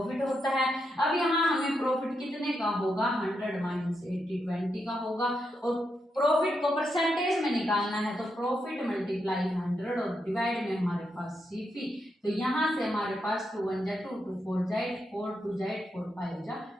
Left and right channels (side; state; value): both; normal; correlation 0.83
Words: होता है। अब यहाँ हमें प्रॉफिट कितने का होगा, 100 माइनस 80 20 का होगा, और प्रॉफिट को परसेंटेज में निकालना है तो प्रॉफिट मल्टीप्लाई 100 और डिवाइड में हमारे पास सीपी, तो यहाँ से हमारे पास 2 1 जा 2 2 4 जा 8 4 2 जा 8 4 5 जा